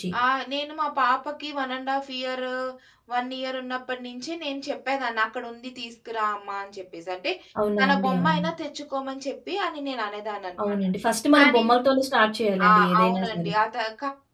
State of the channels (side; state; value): both; identical; correlation 1.00